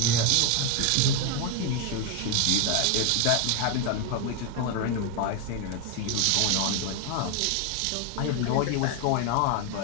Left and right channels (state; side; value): different; both; correlation 0.01